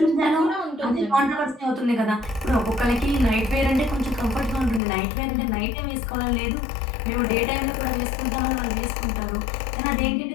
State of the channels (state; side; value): drops out; right; at 4.8 s